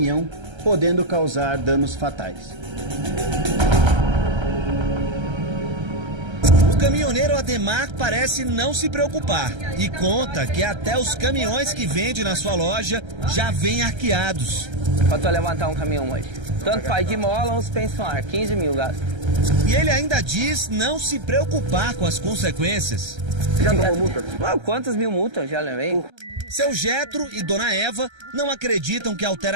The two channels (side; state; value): left; late; 1.3 ms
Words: podendo causar danos fatais. O caminhoneiro Ademar parece não se preocupar e conta que até os caminhões que vende na sua loja já vêm arqueados. Para levantar um caminhão hoje. Tanto faz de mola ou suspensão, 15 mil gasto. E ele ainda diz não se preocupar com as consequências. Já tomou multa? Quantas mil multas já levei? Seu Getro e Dona Eva não acreditam que a